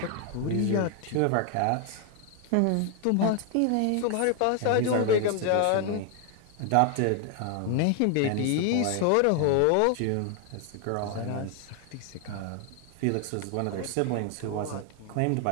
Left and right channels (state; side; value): different; both; correlation 0.00